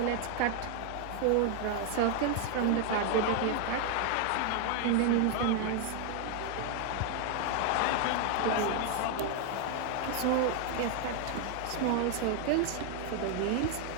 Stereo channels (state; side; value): different; both; correlation 0.00